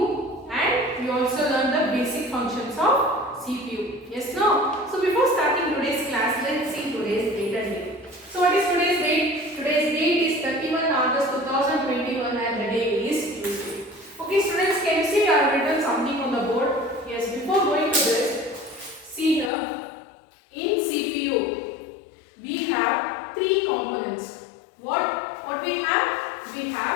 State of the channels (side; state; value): right; drops out; at 19.5 s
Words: and we also learned the basic functions of CPU. Yes, no? So before starting today's class, let's see today's date and date. So what is today's date? Today's date is 31 August 2021 and the day is Tuesday. Okay students, can you see I have written something on the board? Yes, before going to this, see here, in CPU, we have three components. What we have? We